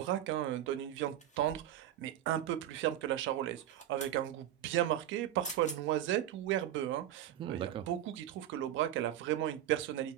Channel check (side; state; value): left; quieter; 11.9 dB